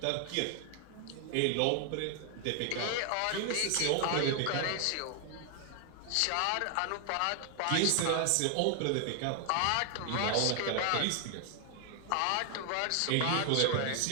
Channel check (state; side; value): different; both; correlation 0.00